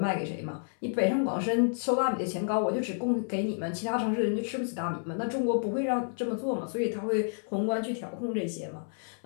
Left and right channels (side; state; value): right; silent; 58 dB below the other